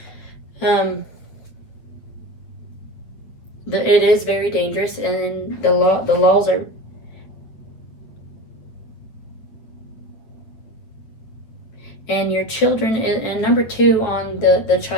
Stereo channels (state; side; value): late; right; 8.9 ms